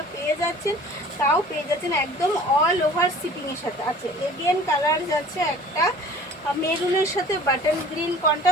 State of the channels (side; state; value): both; normal; correlation 0.46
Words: পেয়ে যাচ্ছেন, তাও পেয়ে যাচ্ছেন একদম অল ওভার শিপিংয়ের সাথে। আচ্ছা, এগেন কালার যাচ্ছে একটা মেরুনের সাথে বাটন গ্রিন